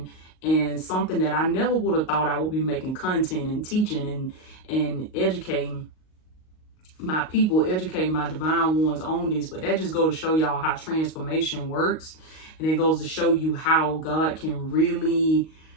and something that I never would have thought I would be making content and teaching and educating my people, educating my divine ones on this. But that just goes to show y'all how transformation works. And it goes to show you how God can really,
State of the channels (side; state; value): right; late; 38 ms